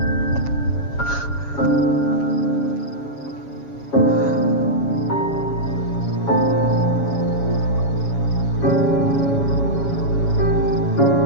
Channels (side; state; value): right; late; 7.2 ms